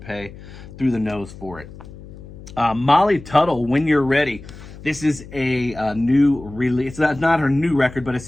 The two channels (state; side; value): noise; left; hum, 16 dB below the sound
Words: through the nose for it. Molly Tuttle, When You're Ready. This is a new release. It's not her new record, but